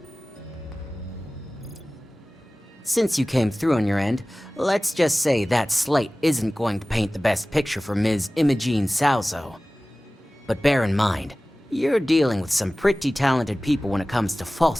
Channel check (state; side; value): normal; both; correlation 0.98